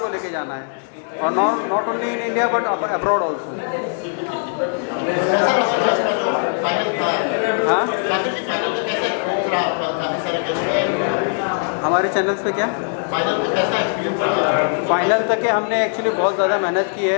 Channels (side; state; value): right; silent; 59 dB below the other